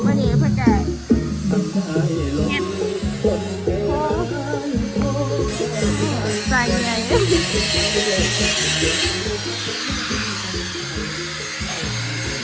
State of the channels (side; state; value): both; identical; correlation 1.00